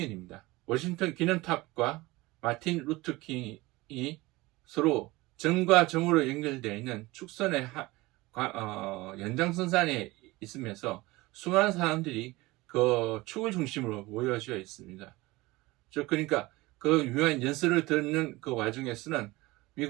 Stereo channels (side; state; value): left; quieter; 20.9 dB